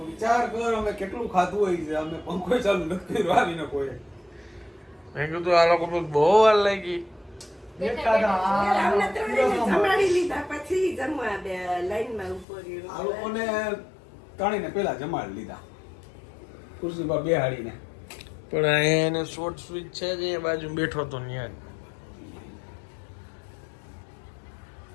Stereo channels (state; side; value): drops out; right; at 12.5 s